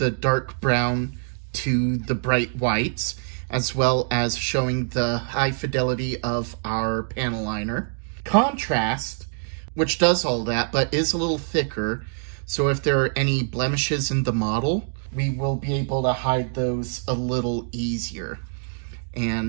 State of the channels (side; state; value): left; silent; digital silence